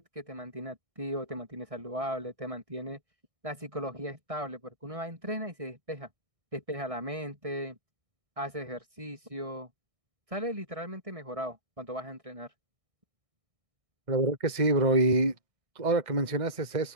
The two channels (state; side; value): late; left; 1.6 ms